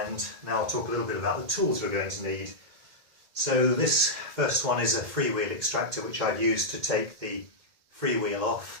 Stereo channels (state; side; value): late; left; 2.1 ms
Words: now I'll talk a little bit about the tools we're going to need. So this first one is a freewheel extractor, which I've used to take the freewheel